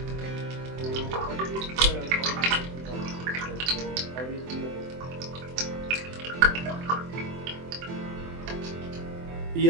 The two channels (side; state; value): left; late; 24 ms